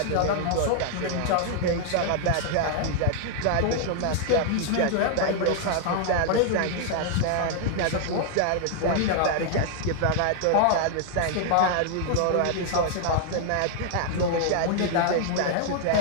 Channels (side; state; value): both; different; correlation 0.00